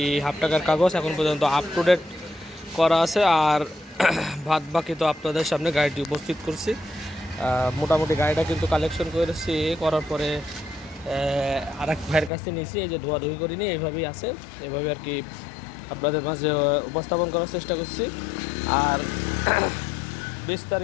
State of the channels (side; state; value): right; drops out; at 12.3 s